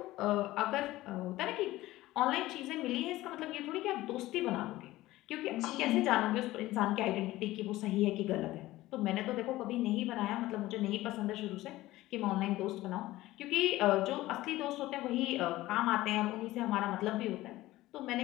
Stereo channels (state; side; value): quieter; right; 17.1 dB